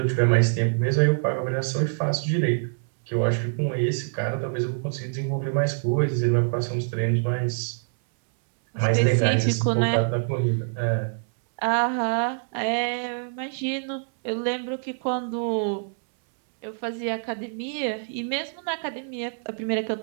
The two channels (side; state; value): left; silent; 62 dB below the other